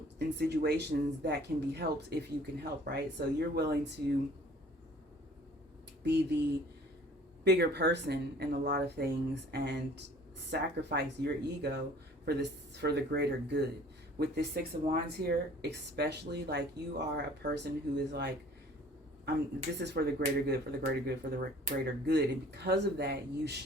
in situations that can be helped if you can help, right? So you're willing to be the bigger person in a lot of things and sacrifice your ego for the greater good. With this Six of Wands here, especially, like you are a person who is like, this is for the greater good, for the greater good, for the greater good. And because of that, you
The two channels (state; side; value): normal; both; correlation 0.52